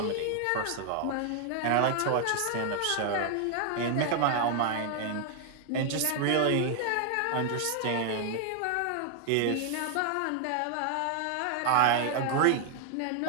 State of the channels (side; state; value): both; different; correlation 0.00